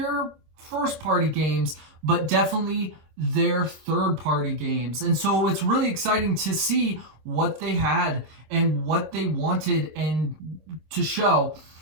first-party games, but definitely their third-party games. And so it's really exciting to see what they had and what they wanted and to show.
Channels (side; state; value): left; late; 26 ms